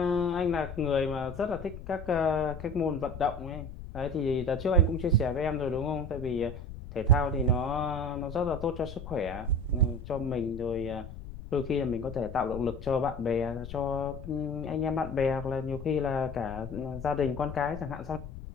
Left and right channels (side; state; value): left; noise; rumble, 11 dB below the sound